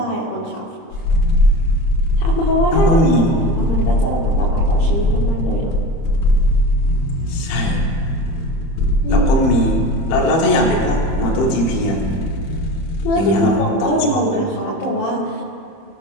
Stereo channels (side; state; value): right; late; 31 ms